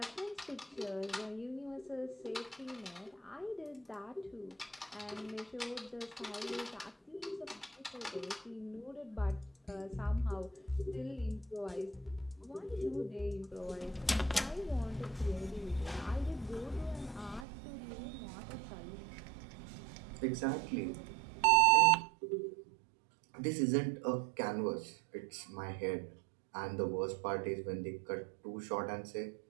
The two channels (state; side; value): drops out; left; at 17.4 s